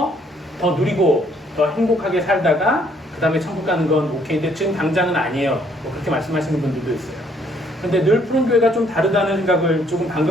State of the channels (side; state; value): both; normal; correlation 0.66